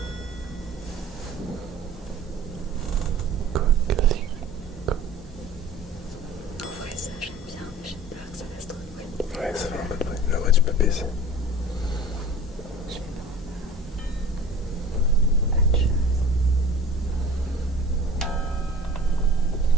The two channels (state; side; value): normal; both; correlation 0.42